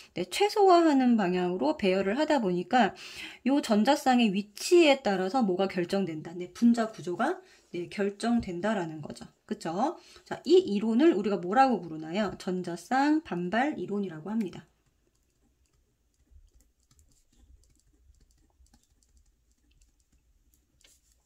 최소화하는 방향으로 배열을 하다 보니까 이 전자쌍의 위치에 따라서 뭐가 결정된다. 분자 구조가 결정된다라는 거죠. 그쵸? 자, 이 이론을 우리가 뭐라고 부르나요? 전자쌍 반발 이론이라고 합니다.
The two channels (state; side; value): identical; both; correlation 1.00